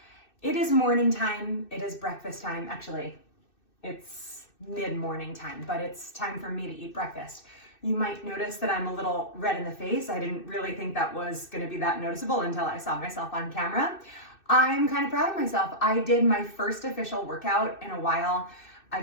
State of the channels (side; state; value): right; late; 2.6 ms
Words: It is morning time, it is breakfast time. Actually, it's mid-morning time, but it's time for me to eat breakfast. You might notice that I'm a little red in the face. I didn't really think that was gonna be that noticeable until I saw myself on camera. I'm kind of proud of myself. I did my first official workout in a while. I